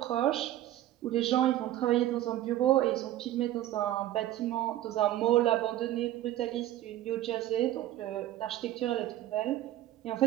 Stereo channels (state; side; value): quieter; left; 13.7 dB